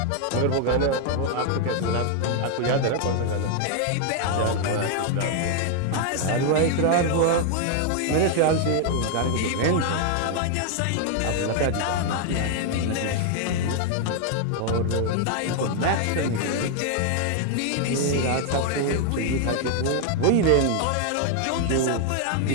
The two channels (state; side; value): different; both; correlation 0.00